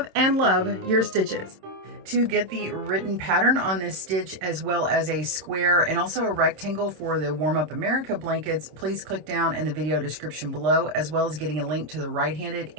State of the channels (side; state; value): left; late; 26 ms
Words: and love your stitches. To get the written pattern on this stitch, as well as a square and also a rectangle for the Warm Up America blankets, please click down in the video description below, as well as getting a link to the right-handed